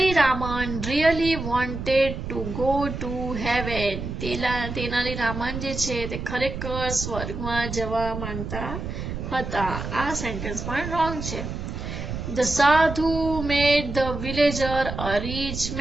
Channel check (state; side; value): noise; right; rumble, 6 dB below the sound